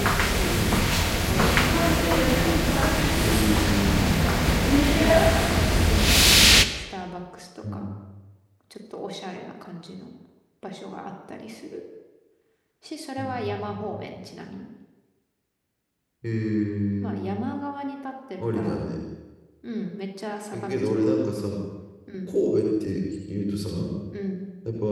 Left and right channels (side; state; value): both; identical; correlation 1.00